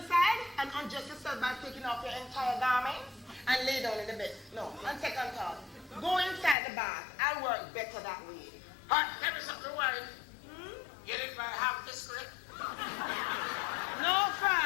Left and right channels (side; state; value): right; drops out; at 6.6 s